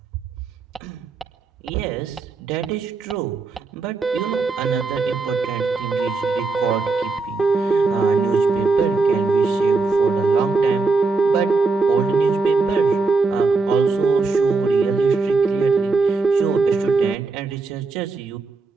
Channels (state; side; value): quieter; left; 4.0 dB